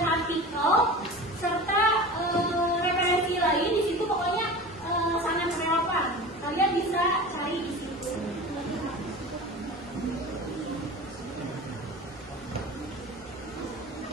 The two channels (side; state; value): both; normal; correlation 0.34